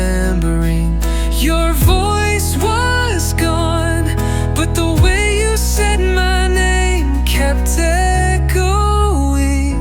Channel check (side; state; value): both; identical; correlation 1.00